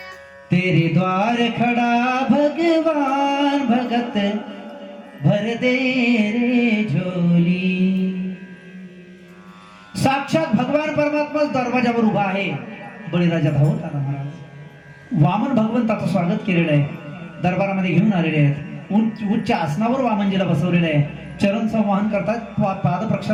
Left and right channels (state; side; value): identical; both; correlation 1.00